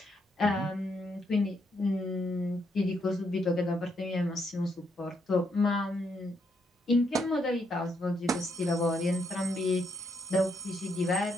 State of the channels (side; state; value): both; normal; correlation 0.76